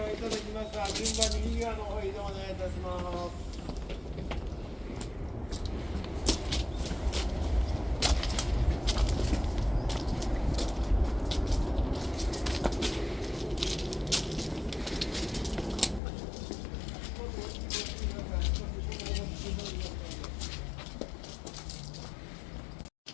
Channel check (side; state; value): right; drops out; at 16.0 s